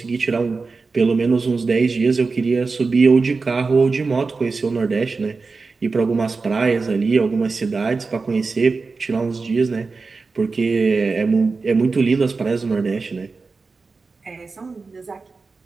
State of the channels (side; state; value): left; quieter; 4.2 dB